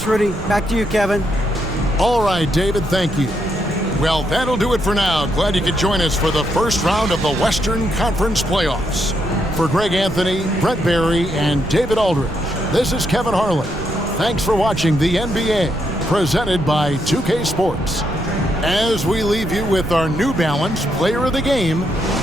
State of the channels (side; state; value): right; noise; rumble, 10 dB below the sound